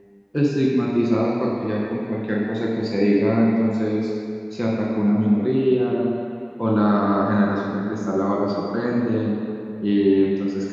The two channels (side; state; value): both; identical; correlation 1.00